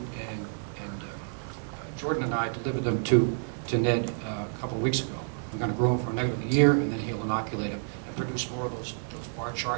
Jordan and I delivered them to Ned a couple of weeks ago. We're going to grow them for another year, and then he'll inoculate them and produce more of those bar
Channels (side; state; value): left; silent; digital silence